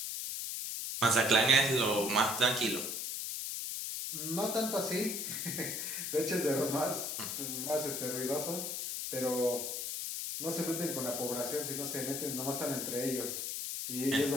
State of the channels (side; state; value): left; noise; hiss, 3 dB below the sound